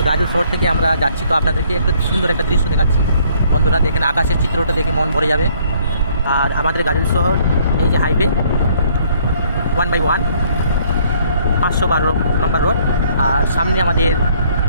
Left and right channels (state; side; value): inverted; both; correlation -0.63